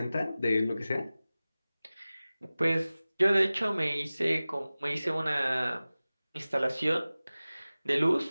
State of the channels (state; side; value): inverted; both; correlation -0.97